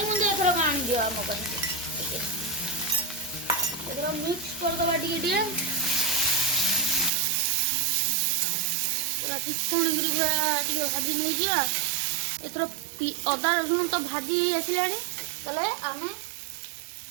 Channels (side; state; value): left; drops out; at 7.1 s